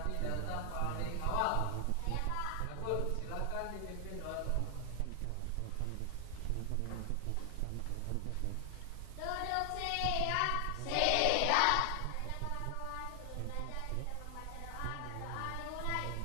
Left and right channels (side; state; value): both; different; correlation 0.00